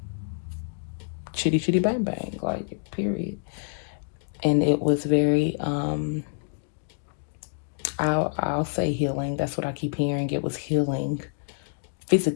chitty chitty bang bang, like, period. And it was very, I'll say healing. That's what I keep hearing. It was healing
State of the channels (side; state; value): right; silent; digital silence